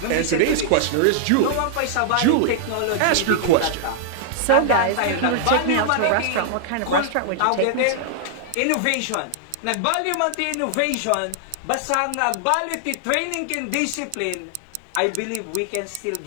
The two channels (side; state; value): both; different; correlation -0.01